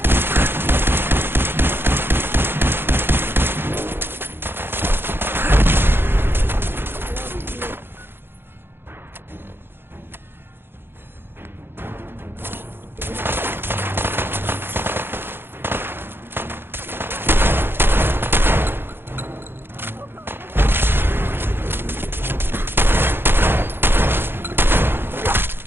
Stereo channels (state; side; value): late; left; 0.10 ms